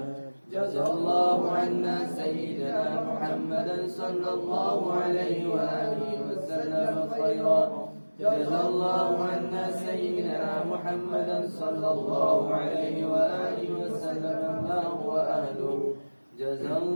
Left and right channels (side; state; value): both; inverted; correlation -1.00